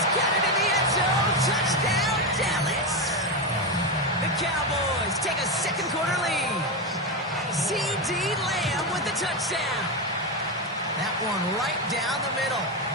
got it in the end zone. Touchdown, Dallas. The Cowboys take a second quarter lead. C.D. Lamb with the touchdown. That one right down the middle.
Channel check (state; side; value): normal; both; correlation 0.12